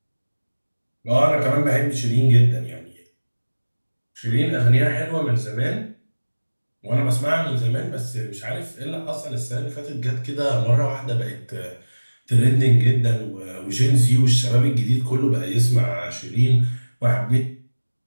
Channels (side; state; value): both; inverted; correlation -1.00